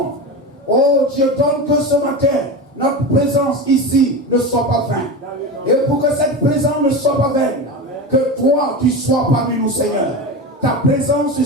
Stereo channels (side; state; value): both; normal; correlation 0.23